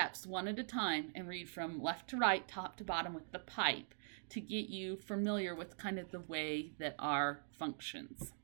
one at a time and read from left to right, top to bottom with the pipe to get you familiar with kind of the way that R functions.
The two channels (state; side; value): silent; left; digital silence